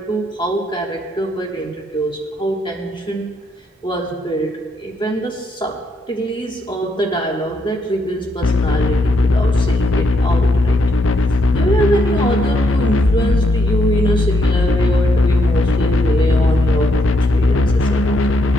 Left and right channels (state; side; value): normal; both; correlation 0.76